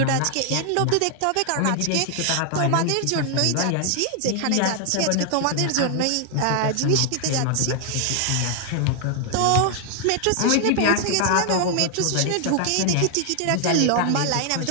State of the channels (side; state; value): both; different; correlation 0.00